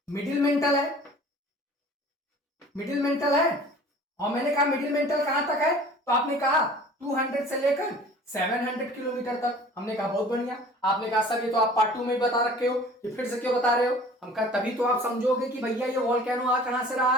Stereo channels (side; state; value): both; normal; correlation 0.47